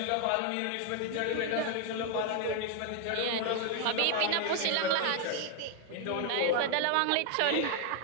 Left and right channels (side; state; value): both; different; correlation 0.01